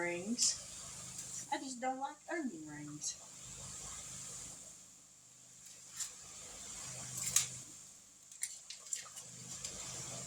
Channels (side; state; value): both; identical; correlation 1.00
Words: I just don't like onion rings.